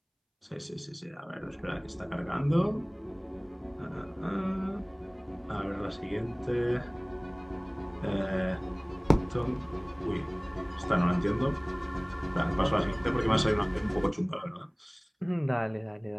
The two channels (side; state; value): both; identical; correlation 1.00